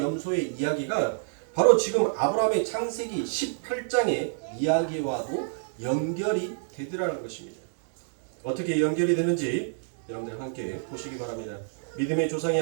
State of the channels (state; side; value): silent; left; digital silence